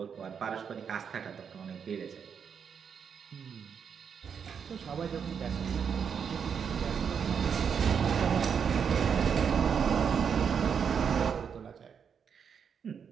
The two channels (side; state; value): left; quieter; 7.0 dB